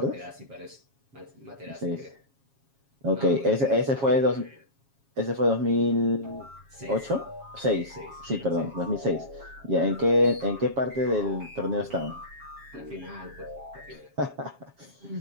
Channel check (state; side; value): late; left; 7.3 ms